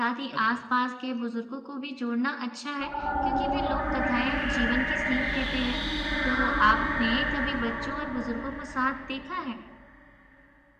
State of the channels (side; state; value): both; identical; correlation 1.00